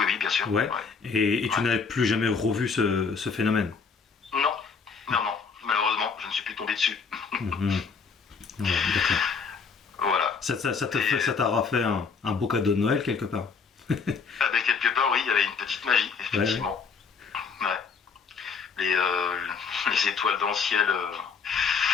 oui, bien sûr. Ouais. Ouais. Et tu Ouais. n'avais plus jamais revu ce phénomène? Non, non, non. Malheureusement, je ne suis plus tombé dessus. Mhm. Ouais, d'accord. Voilà. Ça t'aura fait un beau cadeau de Noël quelque part. Ah ben, quelque part, oui, il y avait une petite magie, effectivement. Ouais. Les, euh, les étoiles dans le ciel,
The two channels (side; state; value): right; quieter; 5.5 dB